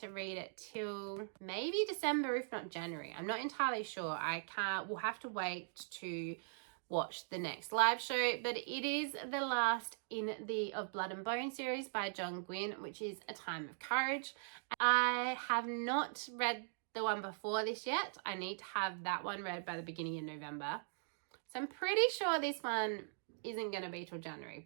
read it till maybe December, if not January. I'm not entirely sure. We'll have to wait to watch the next live show, but it is the last in the Of Blood and Bone series by John Gwynne, which is A Time of Courage. I have not read the one before this yet. I need to have that one read by the beginning of November. So I'm pretty sure this one isn't going to be till January,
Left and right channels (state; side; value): silent; left; digital silence